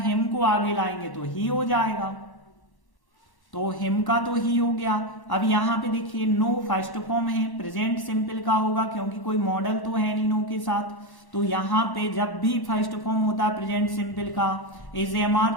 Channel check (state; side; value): late; right; 1.1 ms